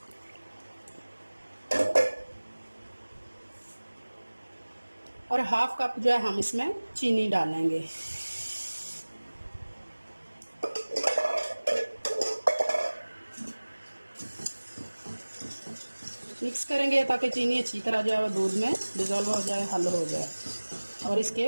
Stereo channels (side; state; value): both; inverted; correlation -1.00